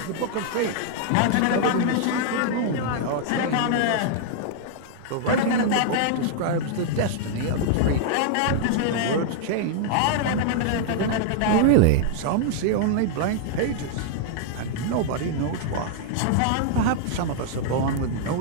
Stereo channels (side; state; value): both; different; correlation -0.01